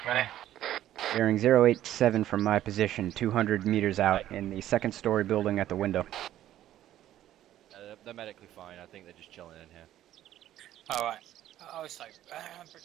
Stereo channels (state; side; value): quieter; left; 12.6 dB